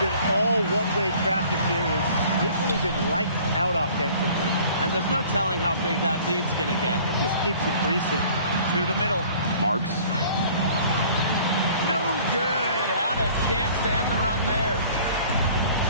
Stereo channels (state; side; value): inverted; both; correlation -0.51